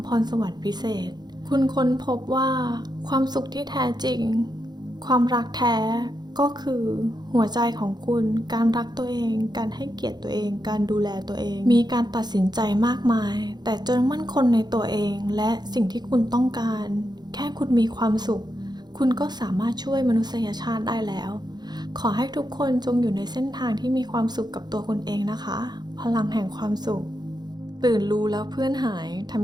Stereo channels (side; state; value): left; late; 0.20 ms